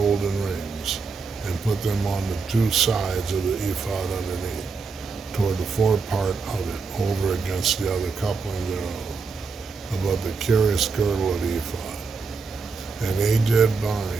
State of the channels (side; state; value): left; quieter; 4.7 dB